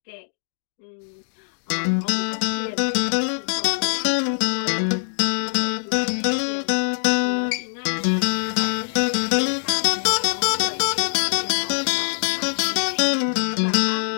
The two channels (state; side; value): silent; right; digital silence